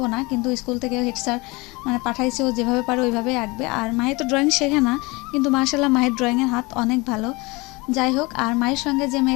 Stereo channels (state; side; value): quieter; right; 24.6 dB